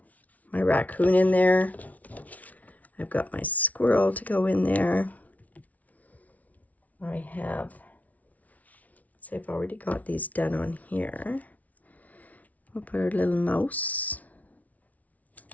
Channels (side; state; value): right; late; 0.071 ms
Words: my raccoon in there. I've got my squirrel to go in there. I have, so I've already got these done on here. We'll put our little mouse